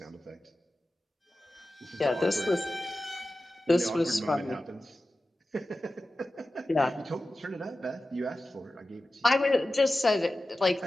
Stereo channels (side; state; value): both; normal; correlation 0.94